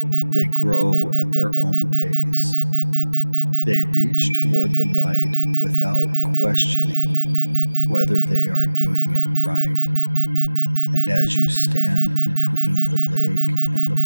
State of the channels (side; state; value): both; inverted; correlation -1.00